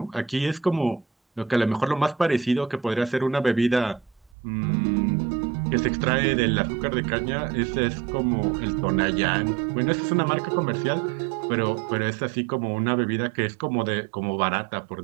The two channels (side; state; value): left; drops out; at 4.4 s